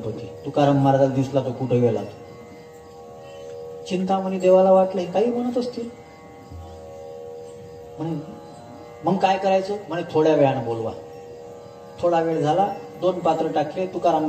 तुकाराम महाराजाला दिसला तो कुठं गेला. चिंतामणी देवाला वाटलं काही म्हणत असतील. म्हणे मग काय करायचं? म्हणे थोड्या वेळानं बोलवा. थोडा वेळ झाला, 2 पात्र टाकले. तुकाराम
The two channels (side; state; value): both; identical; correlation 1.00